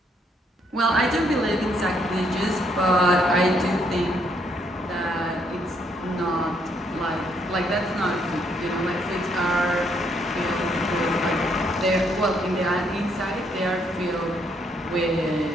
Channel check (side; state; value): both; normal; correlation 0.71